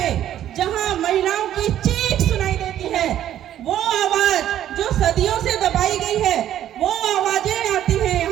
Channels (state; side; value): quieter; left; 11.5 dB